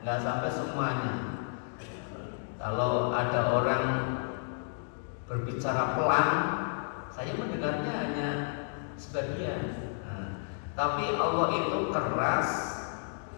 sampai semuanya. Kalau ada orang berbicara pelan, saya mendengarnya hanya sebagian. Nah, tapi Allah itu keras,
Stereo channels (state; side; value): silent; right; digital silence